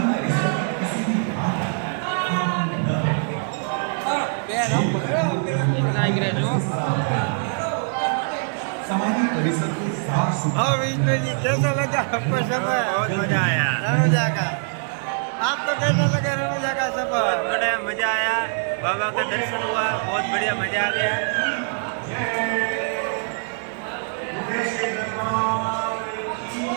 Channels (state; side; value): silent; left; 57 dB below the other